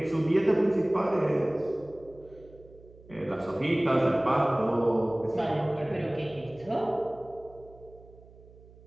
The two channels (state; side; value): noise; right; hum, 23 dB below the sound